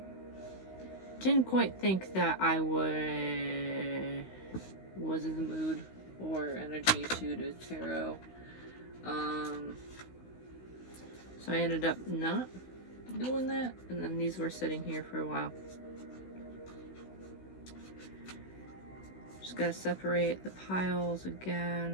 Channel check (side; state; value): right; late; 16 ms